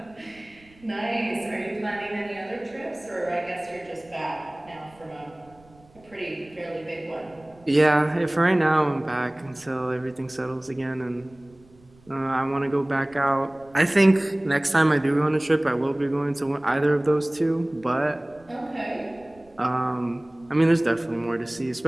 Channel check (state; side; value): noise; right; rumble, 28 dB below the sound